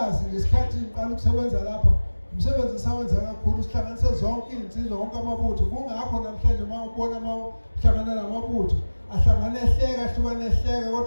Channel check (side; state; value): both; inverted; correlation -1.00